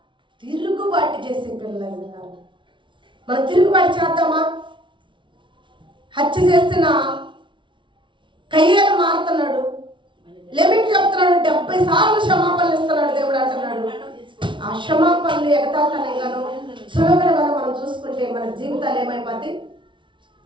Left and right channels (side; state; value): left; late; 0.24 ms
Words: తిరుగుబాటు చేసే పిల్లలు ఉన్నారు. మనం తిరుగుబాటు చేద్దామా? హత్య చేసిన కయ్యేను మారుతున్నాడు, లెమిట్ చెప్తున్నాడు, 70 సార్లు క్షమాపణలు ఇస్తున్నాడు దేవుడు అంటున్నాడు. ఆ క్షమాపణలు ఎగతాళిగాను సులభంగాను మనం చూసుకుంటే మన జీవితాలు ఏమైపోతాయి?